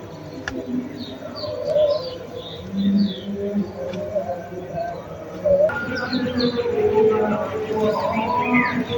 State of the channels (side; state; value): both; identical; correlation 1.00